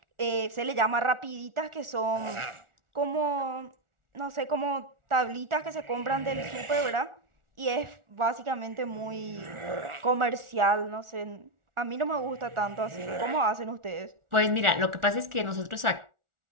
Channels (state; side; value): late; left; 1.4 ms